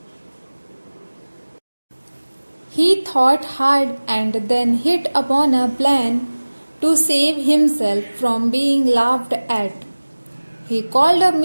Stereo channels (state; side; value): inverted; both; correlation -1.00